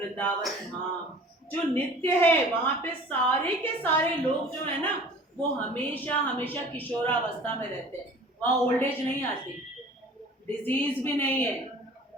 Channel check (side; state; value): both; normal; correlation 0.45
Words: धाम जो नित्य है। वहां पे सारे के सारे लोग जो है ना वो हमेशा हमेशा किशोरावस्था में रहते हैं। वहां ओल्ड एज नहीं आती, डिजीज भी नहीं है।